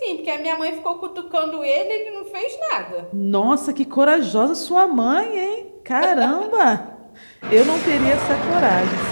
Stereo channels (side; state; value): both; inverted; correlation -1.00